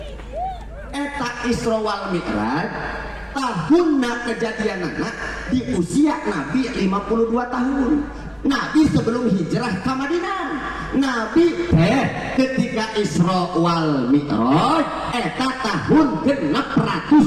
eta Isra wal Mi'raj tahunna kejadianana di usia Nabi 52 tahun Nabi sebelum hijrah ke Madinah Nabi ketika Isra wal Mi'raj eta tahun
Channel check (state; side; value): identical; both; correlation 1.00